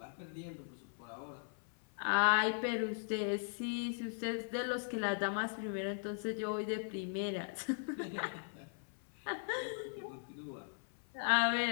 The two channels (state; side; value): silent; right; 52 dB below the other